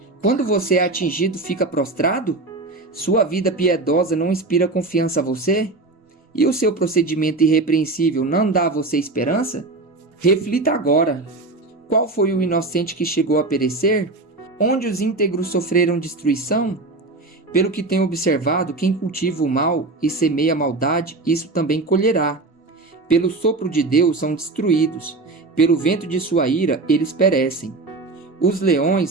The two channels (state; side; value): quieter; left; 3.3 dB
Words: Quando você é atingido, fica prostrado? Sua vida piedosa não inspira confiança a você? E o seu procedimento irrepreensível não dá a você esperança? Reflita agora. Qual foi o inocente que chegou a perecer? Onde os íntegros sofreram destruição? Pelo que tenho observado, quem cultiva o mal e semeia a maldade, isso também colherá. Pelo sopro de Deus são destruídos, pelo vento de sua ira eles perecem. Os